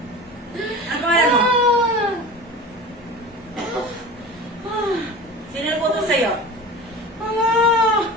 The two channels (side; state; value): both; normal; correlation 0.34